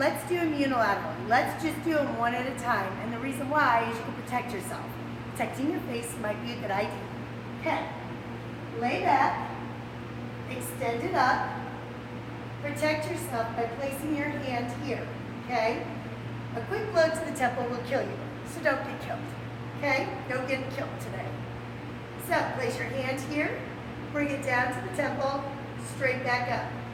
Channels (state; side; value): identical; both; correlation 1.00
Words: do them unilaterally. Let's just do them one at a time. And the reason why is you can protect yourself. Protecting your face might be a good idea. Okay, lay back, extend it up, protect yourself by placing your hand here, okay? A quick blow to the temple will kill you, so don't get killed. Okay? Don't get killed today. So place your hand here, bring it down to the temple, straight back